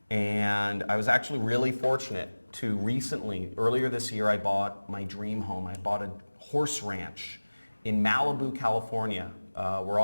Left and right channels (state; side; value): inverted; both; correlation -1.00